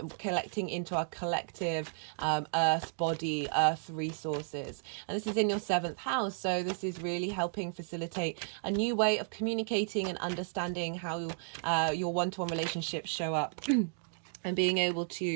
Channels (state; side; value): silent; left; digital silence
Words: Collecting into our collective earth body, earth resources. And this is in your 7th house. So this is really helping facilitate a new way of communicating and understanding how your one-to-one relationships show up. And being able